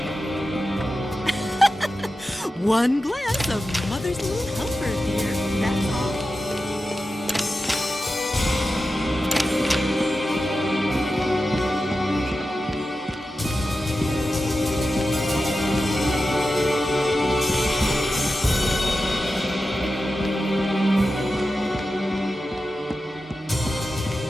One glass of Mother's little comfort, dear. That's all.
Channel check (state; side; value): normal; both; correlation 0.92